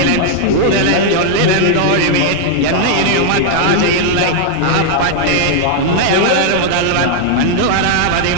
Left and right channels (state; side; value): different; both; correlation 0.00